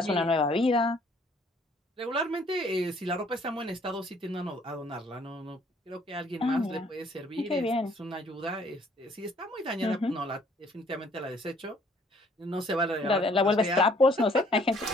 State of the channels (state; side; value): normal; both; correlation 0.61